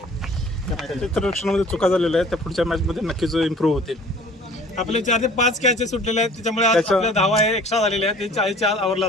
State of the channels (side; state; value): both; normal; correlation 0.49